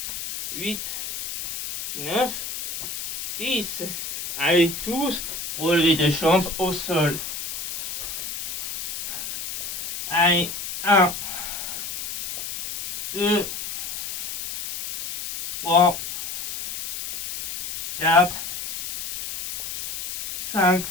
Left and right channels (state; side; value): noise; left; hiss, 7 dB below the sound